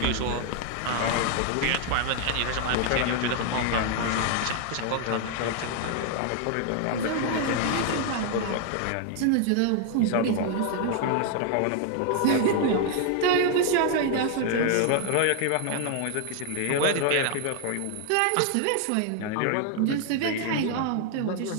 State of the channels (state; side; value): different; both; correlation 0.00